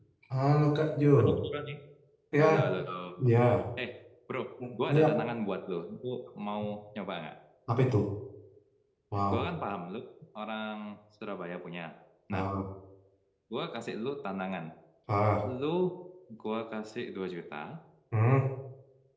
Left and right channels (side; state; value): both; identical; correlation 1.00